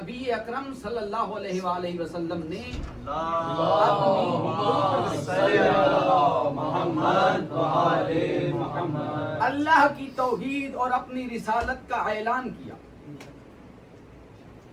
اکرم صلی اللہ علیہ وآلہ وسلم نے اللہ کی توحید اور اپنی رسالت کا اعلان کیا،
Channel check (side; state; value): both; identical; correlation 1.00